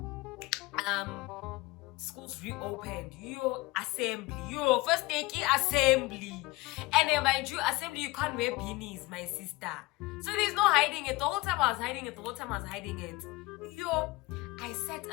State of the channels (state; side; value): quieter; right; 21.3 dB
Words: Schools reopened. First day assembly. And then mind you, assembly, you can't wear beanies, my sister. So there's no hiding it. The whole time I was hiding it. I sat